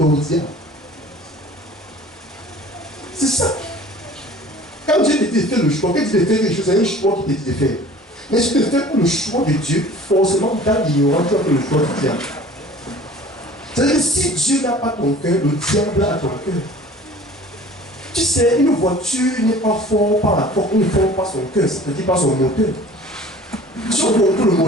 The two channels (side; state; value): both; normal; correlation 0.46